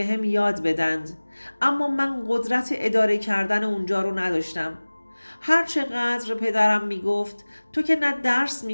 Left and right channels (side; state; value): both; inverted; correlation -1.00